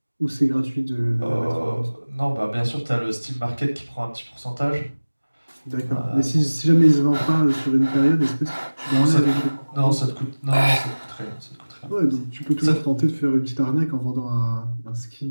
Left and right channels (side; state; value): both; inverted; correlation -1.00